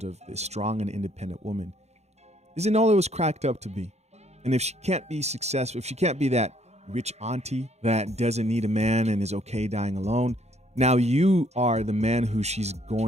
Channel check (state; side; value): late; left; 0.32 ms